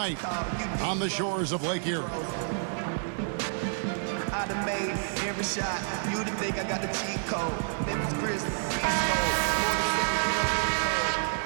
on the shores of Lake Erie. I done made every shot. You to think I got the cheat code. Memphis Grizzlies.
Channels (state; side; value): silent; left; 55 dB below the other